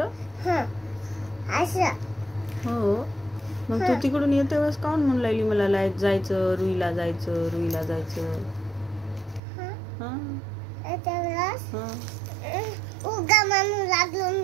असं. हो. मग तू तिकडून येते वेळेस काऊन म्हणून लागली मला जायचं, रुईला जायचं, रुईला जायचं? त्यावेळेस उगा म्हणू लागलो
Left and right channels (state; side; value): drops out; left; at 9.4 s